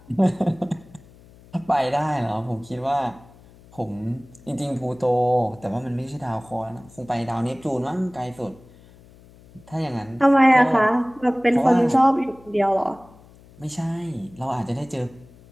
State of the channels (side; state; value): left; noise; hum, 24 dB below the sound